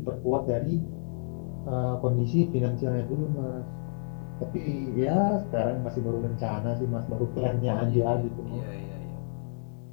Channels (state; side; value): silent; right; digital silence